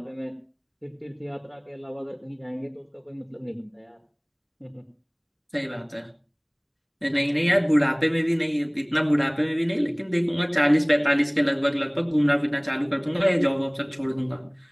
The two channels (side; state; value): both; identical; correlation 1.00